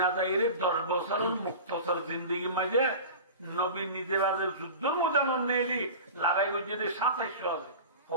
যাইলে 10 বছর মুক্তসর জিন্দেগি মাঝে নবী নিজের আগে যুদ্ধ মোজামন নেলি লড়াই করছে 2700 আছে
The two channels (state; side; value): inverted; both; correlation -0.34